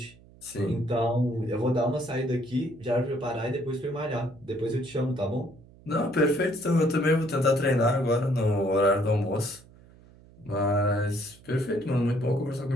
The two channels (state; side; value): noise; right; hum, 24 dB below the sound